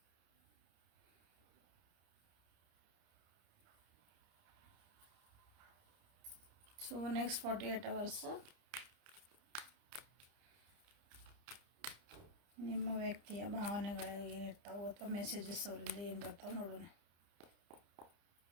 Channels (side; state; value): left; late; 30 ms